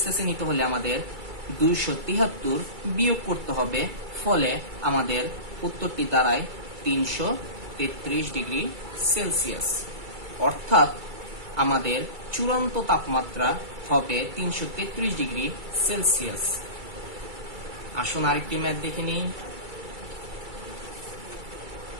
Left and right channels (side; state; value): left; late; 2.3 ms